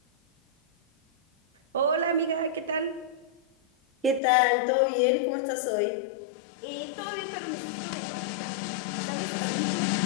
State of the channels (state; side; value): drops out; right; at 4.2 s